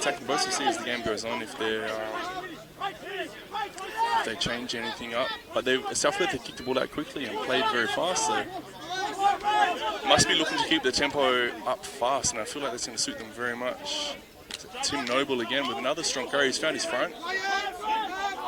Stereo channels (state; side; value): identical; both; correlation 1.00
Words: both. We'll see as the game goes on if they change anything up. But South Perth kicked the ball out quickly and played very fast, so must be looking to keep the tempo up fast, and I feel like that's going to suit them very much. Tim Noble again with another strong carry. He's found his front.